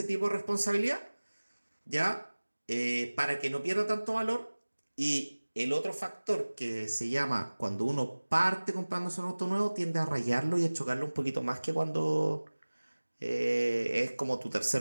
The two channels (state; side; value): inverted; both; correlation -1.00